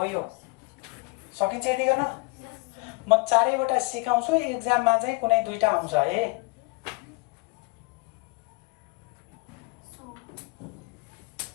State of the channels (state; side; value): quieter; right; 25.9 dB